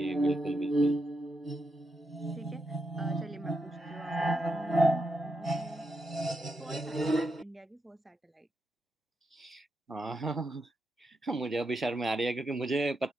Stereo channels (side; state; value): both; normal; correlation 0.84